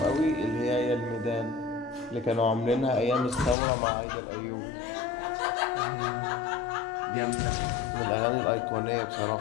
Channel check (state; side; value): drops out; right; at 3.6 s